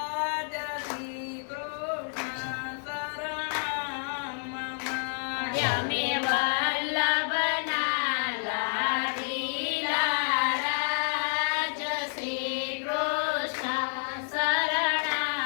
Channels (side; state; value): right; silent; 58 dB below the other